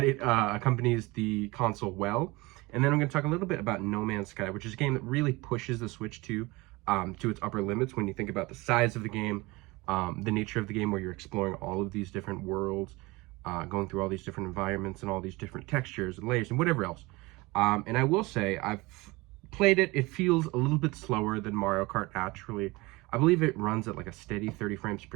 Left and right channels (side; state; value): left; quieter; 23.0 dB